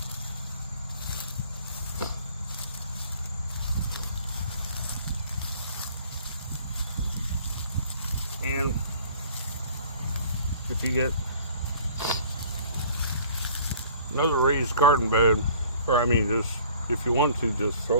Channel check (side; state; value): both; inverted; correlation -0.51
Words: And if you get another raised garden bed, or I mean, just if you want to, just